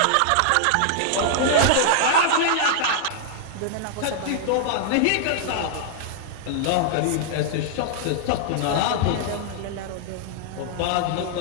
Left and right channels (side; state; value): both; different; correlation -0.01